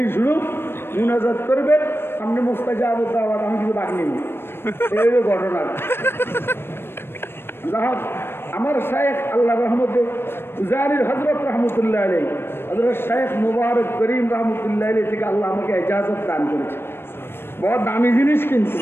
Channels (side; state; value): right; late; 0.11 ms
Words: শুরু, মুনাজাত করবেন, সামনে মুস্তাজাব দাওয়াত, আমি কিছু বাদ নিই। এই ঘটনা যাহোক আমার শায়েখ আল্লাহ রহমতে জারির হযরত রহমতুল্লাহ আলাইহি, হযরত শায়েখ মুবারক করিম রহমতুল্লাহ আলাইহি থেকে আল্লাহ আমাকে ইজাজত দান করেছে। বড় দামি জিনিস, কিন্তু